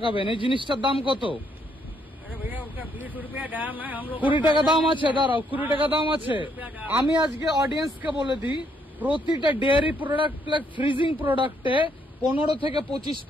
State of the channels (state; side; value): normal; both; correlation 0.72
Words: এই জিনিসটার দাম কত? 20 টাকা দাম আছে। দাঁড়াও, 20 টাকা দাম আছে। আমি আজকে অডিয়েন্সকে বলে দিই, প্রতিটা ডেয়ারি প্রোডাক্ট ফ্রিজিং প্রোডাক্টে 15 থেকে